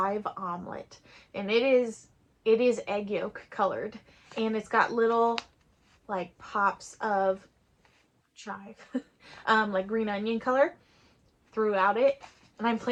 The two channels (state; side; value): identical; both; correlation 1.00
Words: Omelet, and it is egg yolk colored, and it's got little like pops of chive, like green onion color throughout it. And I'm